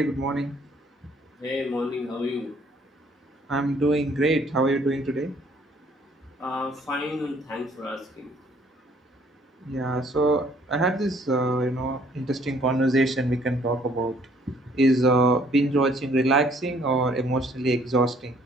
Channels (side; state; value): both; normal; correlation 0.61